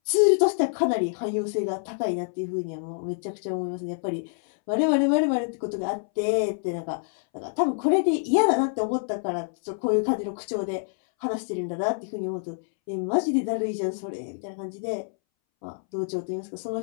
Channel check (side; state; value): right; silent; 60 dB below the other